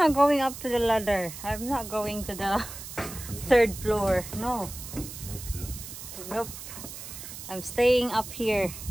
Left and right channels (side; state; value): right; noise; hiss, 11 dB below the sound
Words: going up to the ladder. I'm not going to the third floor. No. Okay. Nope. I'm staying up here.